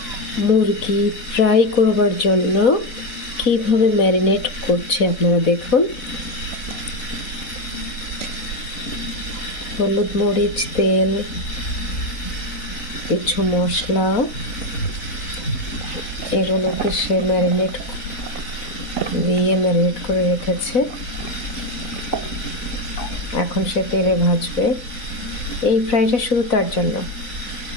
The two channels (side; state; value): right; late; 4.1 ms